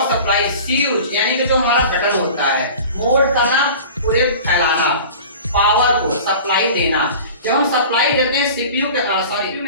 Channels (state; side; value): inverted; both; correlation -0.40